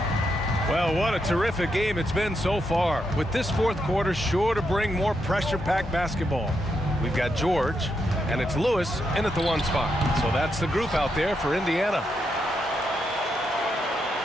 Well, what a terrific game it's been so far. With this fourth quarter sure to bring more pressure-packed basketball. We've got George, and it's Lewis in at the 1 spot. So that's the group out there for Indiana.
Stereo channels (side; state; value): both; normal; correlation 0.81